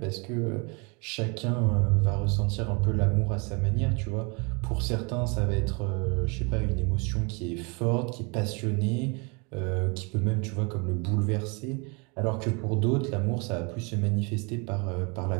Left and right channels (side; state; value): left; quieter; 31.7 dB